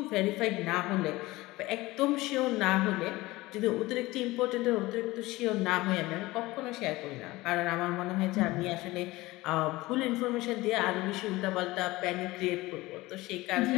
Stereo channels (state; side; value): quieter; right; 19.7 dB